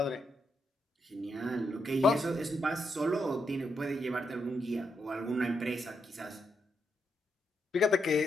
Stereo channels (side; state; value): both; normal; correlation 0.81